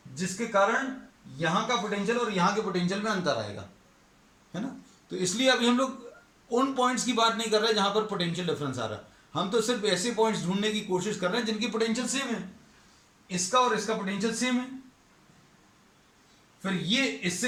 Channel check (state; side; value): identical; both; correlation 1.00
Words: जिसके कारण यहां का पोटेंशियल और यहां के पोटेंशियल में अंतर आएगा, है ना। तो इसलिए अभी हम लोग उन पॉइंट्स की बात नहीं कर रहे जहां पर पोटेंशियल डिफरेंस आ रहा है, हम तो सिर्फ ऐसे पॉइंट्स ढूंढने की कोशिश कर रहे हैं जिनकी पोटेंशियल सेम है। इसका और इसका पोटेंशियल सेम है, फिर ये